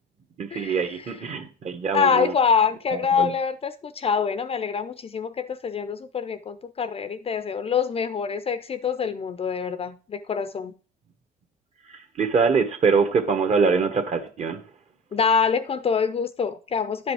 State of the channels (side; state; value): both; normal; correlation 0.33